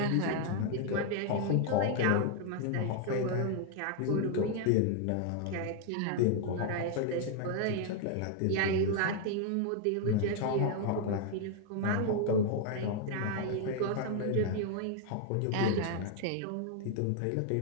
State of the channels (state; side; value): different; both; correlation 0.00